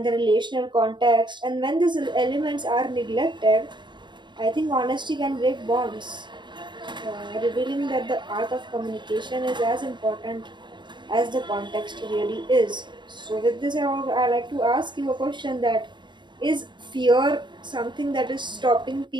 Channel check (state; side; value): late; left; 0.22 ms